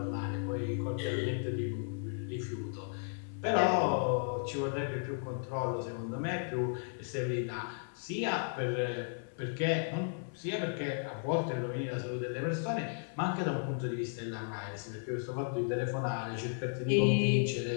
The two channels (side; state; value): right; silent; 55 dB below the other